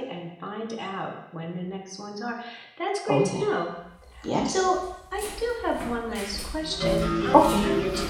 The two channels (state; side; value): identical; both; correlation 1.00